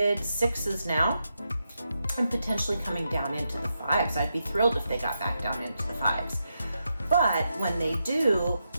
sixes now, and potentially coming down into the fives. I'd be thrilled if they got back down into the fives. But when they do,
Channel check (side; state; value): both; inverted; correlation -0.85